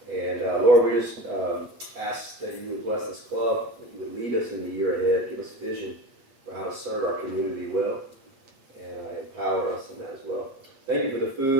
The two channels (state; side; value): late; left; 8.4 ms